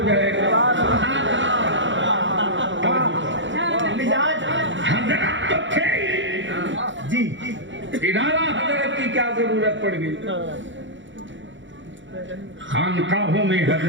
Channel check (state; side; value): late; left; 0.55 ms